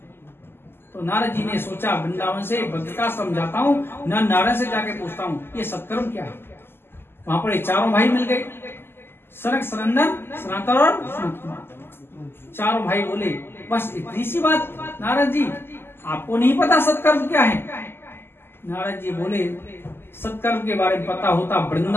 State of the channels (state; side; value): late; right; 0.11 ms